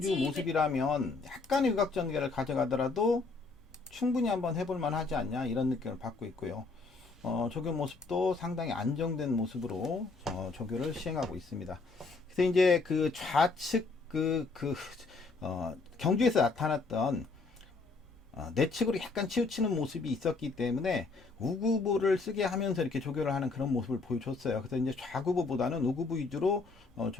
모습이라면 약간의 유각 전개를 가져가더라도 충분히 한번 해볼 만하지 않냐 이런 느낌을 받고 있고요. 조교 모습도 상당히 안정된 모습으로 조교를 시행하고 있습니다. 그래서 이제 그 좌측 경주에서 나타났던 내측으로 약간 치우치는 모습이 있었기 때문에 우구부를 쓰게 하면서 이렇게 조교를 하는 그런 모습을 보여줬어요. 그래서 이제 좌구부보다는 우구부 위주로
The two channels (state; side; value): quieter; right; 3.9 dB